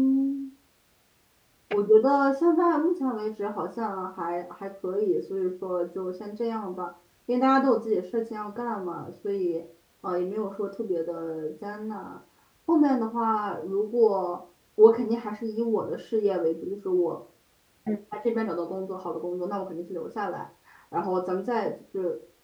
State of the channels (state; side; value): identical; both; correlation 1.00